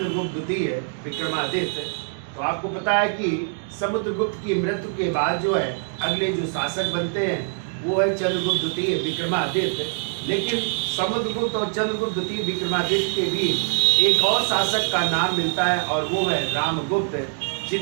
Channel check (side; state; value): left; silent; 63 dB below the other